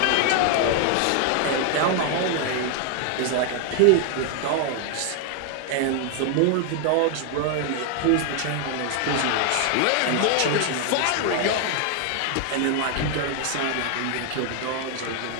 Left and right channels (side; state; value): both; different; correlation 0.00